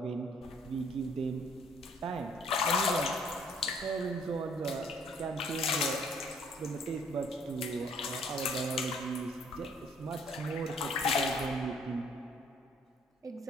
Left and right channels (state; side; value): normal; both; correlation 0.61